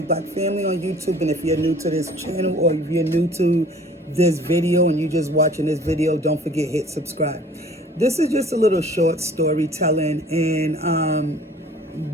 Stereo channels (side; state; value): both; normal; correlation 0.50